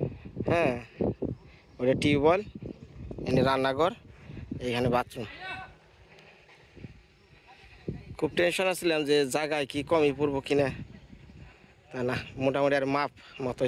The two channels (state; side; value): identical; both; correlation 1.00